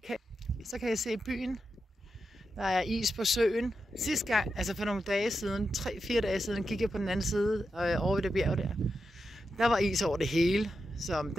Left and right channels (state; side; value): normal; both; correlation 0.88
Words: Så kan jeg se byen. Der er is på søen. Sidste gang, altså for nogle dage siden, 3-4 dage siden, gik jeg på den anden side over ved det bjerg der. Der var is over det hele, så